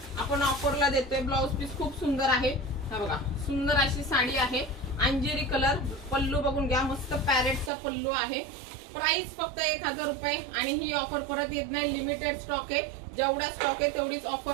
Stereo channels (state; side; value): drops out; left; at 7.7 s